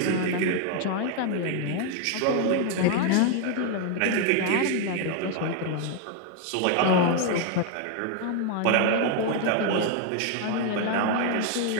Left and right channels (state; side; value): different; both; correlation 0.00